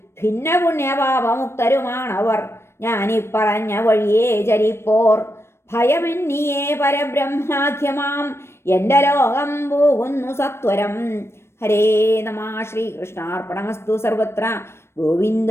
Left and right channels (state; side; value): late; right; 0.12 ms